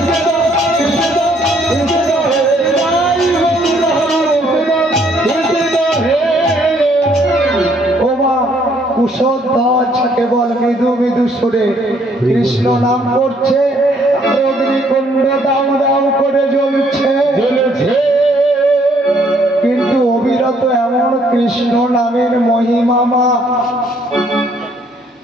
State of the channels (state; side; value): normal; both; correlation 0.66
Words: কুশধ্বজ কেবল মৃদু মৃদু সুরে কৃষ্ণ নাম করছে, অগ্নিকুণ্ড দাউ দাউ করে জ্বলছে। কিন্তু অবিরত এমন কৃষ্ণ নামের মহিমামা